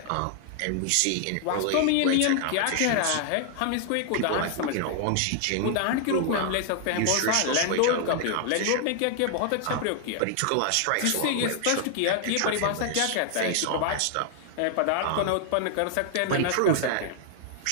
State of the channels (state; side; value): different; both; correlation 0.00